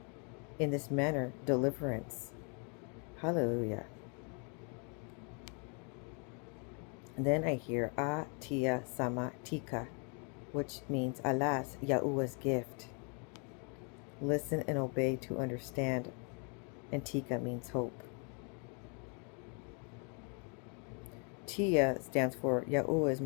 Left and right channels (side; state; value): right; quieter; 37.7 dB